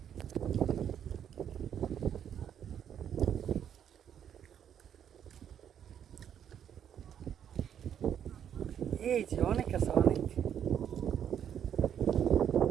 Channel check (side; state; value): left; quieter; 9.1 dB